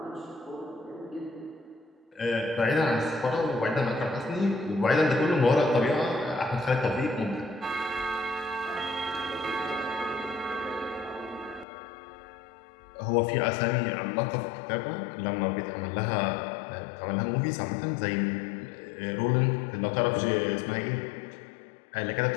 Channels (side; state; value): right; drops out; at 11.7 s